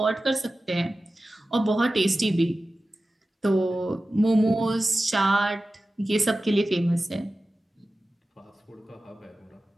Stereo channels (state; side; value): normal; both; correlation 0.95